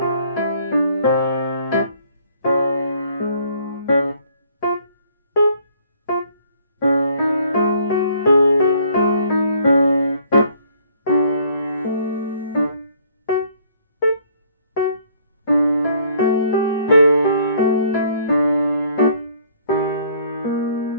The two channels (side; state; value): both; inverted; correlation -0.61